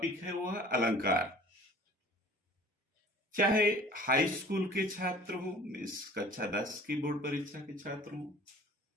है वो है अलंकार। चाहे हाई स्कूल के छात्र हो, इस कक्षा 10 की बोर्ड परीक्षा के छात्र हो,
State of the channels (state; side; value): normal; both; correlation 0.46